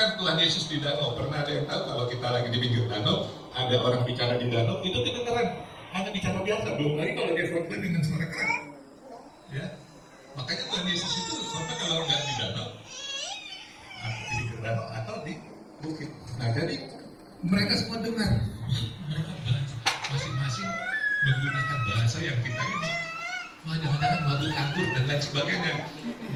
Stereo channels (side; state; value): both; identical; correlation 1.00